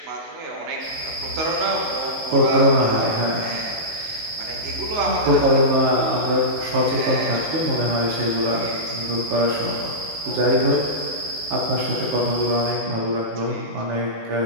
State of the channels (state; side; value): late; left; 19 ms